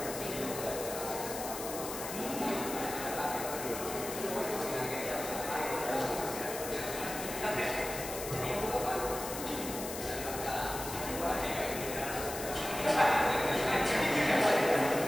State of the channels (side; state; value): left; noise; hiss, 8 dB below the sound